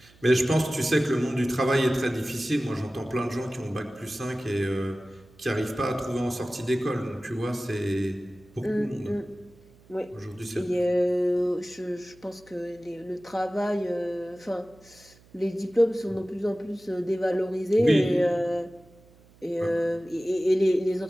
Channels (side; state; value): right; noise; hum, 27 dB below the sound